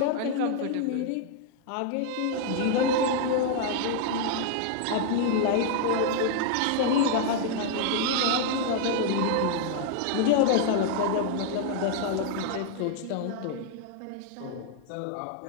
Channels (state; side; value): different; both; correlation 0.00